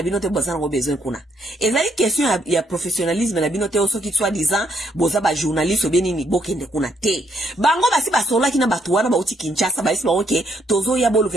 bino te bazana ko besoin kuna ezali question ya professionnalisme na bino te osoki soit disant boza ba journaliste obeni ni bokende kuna te bango basi basola kina batu wana ba uti Kinshasa ba isi ba oke tozo ya bolu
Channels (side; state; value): both; normal; correlation 0.72